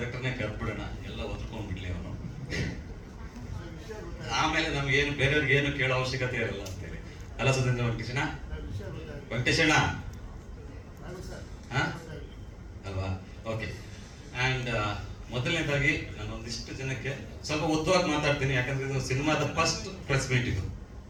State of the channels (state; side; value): identical; both; correlation 1.00